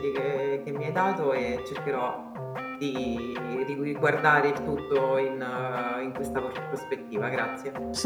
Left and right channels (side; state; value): both; identical; correlation 1.00